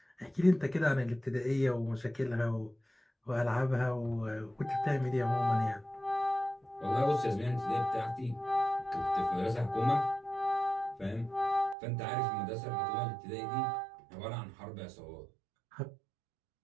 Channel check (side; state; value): left; drops out; at 11.8 s